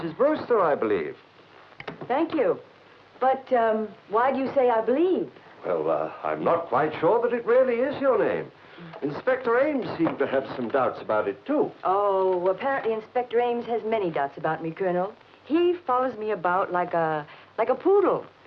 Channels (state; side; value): identical; both; correlation 1.00